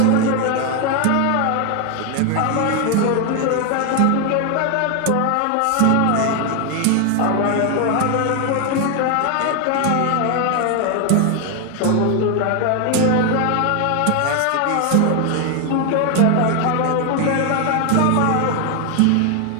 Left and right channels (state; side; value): different; both; correlation 0.01